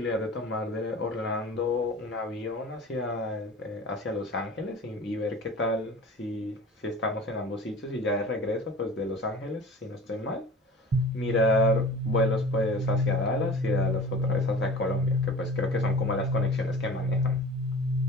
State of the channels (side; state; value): both; normal; correlation 0.40